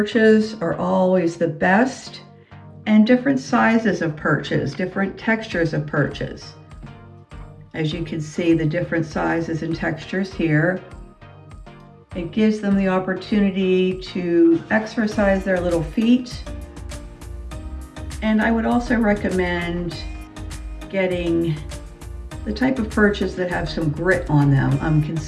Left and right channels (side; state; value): both; identical; correlation 1.00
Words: are always the best, and different sizes of perches, different textures of perches. As you can see, the different sizes and textures here. It gives them the opportunity to exercise their little feet. And I would also recommend getting the type of perches that have some grit on them. I'm